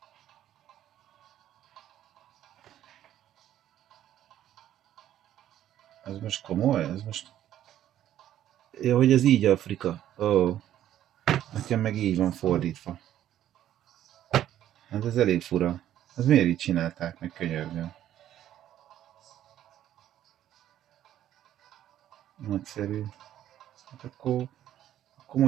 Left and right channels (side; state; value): left; quieter; 11.8 dB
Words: Ez most komoly? Ez most... Ja, hogy ez így Afrika. Ó. Nekem meg így van fordítva. Hát ez elég fura. Ez miért így csinálták meg, könyörgöm? Nagyszerű. Hát akkor